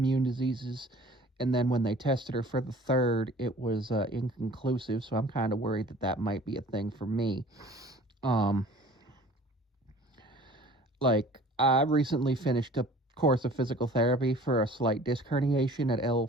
diseases. And then when they tested her for the third, it was inconclusive. So I'm kind of worried that that might be a thing for me. Um, I recently finished a course of physical therapy for a slight disc herniation at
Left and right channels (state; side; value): normal; both; correlation 0.48